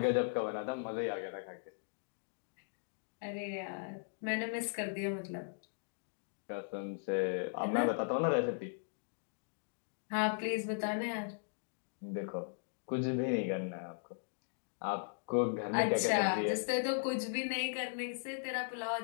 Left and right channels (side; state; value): right; silent; digital silence